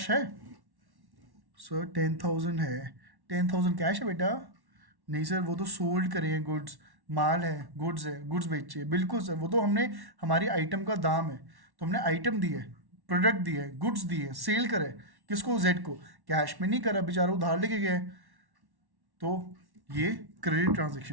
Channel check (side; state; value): left; late; 1.1 ms